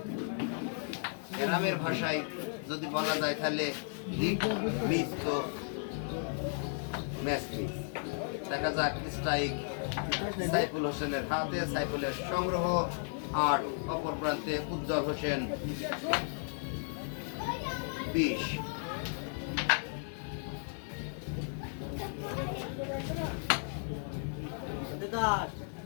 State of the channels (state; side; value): silent; right; 55 dB below the other